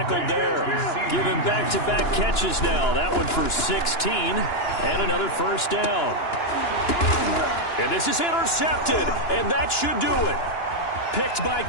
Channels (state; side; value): late; right; 2.9 ms